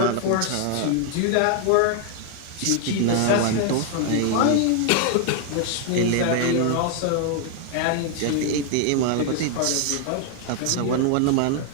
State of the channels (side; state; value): both; different; correlation 0.00